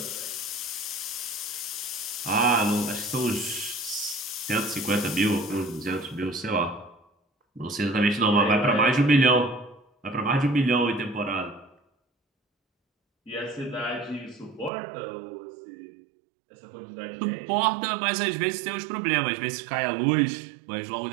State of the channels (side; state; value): left; drops out; at 14.7 s